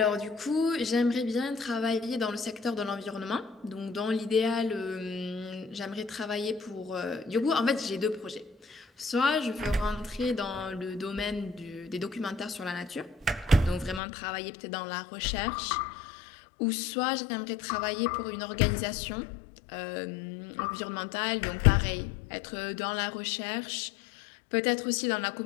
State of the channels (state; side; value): drops out; right; at 14.0 s